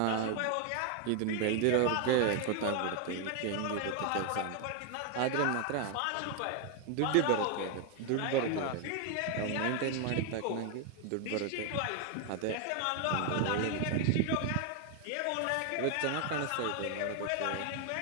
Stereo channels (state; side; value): different; both; correlation 0.01